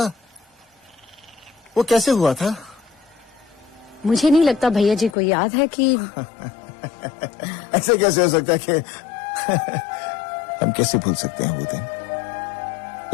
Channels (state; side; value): drops out; right; at 5.2 s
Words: वो कैसे हुआ था? मुझे नहीं लगता भैया जी को याद है कि ऐसे कैसे हो सकता है कि हम कैसे भूल सकते हैं वो दिन?